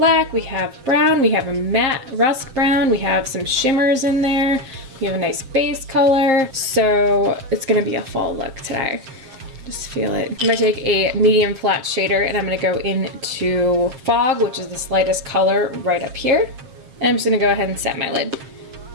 we have brown, we have a matte rust brown, we have some shimmers in there, we have a nice base color. So it's gonna be a fall look today. Just feel it. I'm gonna take a medium flat shader and I'm gonna go into Fog, which is the slightest color right up here. And I'm just gonna go ahead and set my lid.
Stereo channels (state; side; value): late; left; 7.6 ms